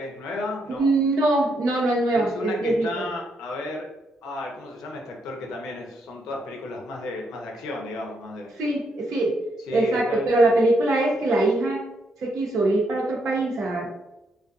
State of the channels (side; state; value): both; normal; correlation 0.77